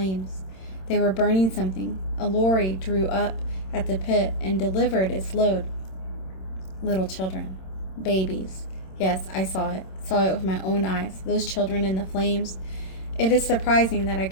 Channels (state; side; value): late; right; 26 ms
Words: They were burning something. A lorry drew up at the pit and delivered its load. Little children. Babies. Yes, I saw it with my own eyes. Those children in the flames. It is surprising that I